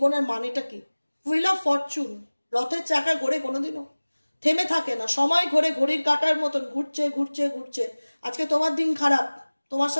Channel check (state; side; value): inverted; both; correlation -1.00